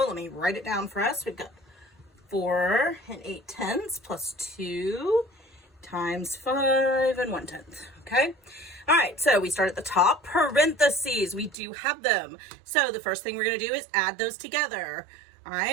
let me write it down for us. We've got 4 8/10 plus 2 times 5 1/10. Okay. All right. So we start at the top. Parentheses. We do have them. So the first thing we're going to do is add those together. All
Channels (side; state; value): left; drops out; at 11.6 s